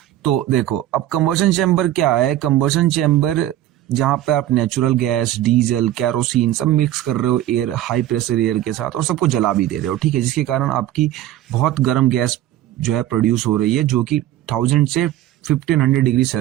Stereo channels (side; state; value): left; quieter; 13.5 dB